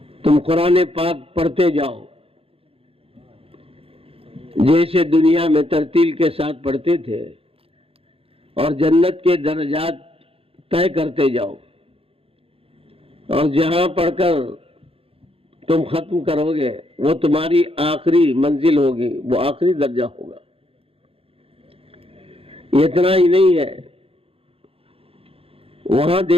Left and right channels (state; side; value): late; left; 0.27 ms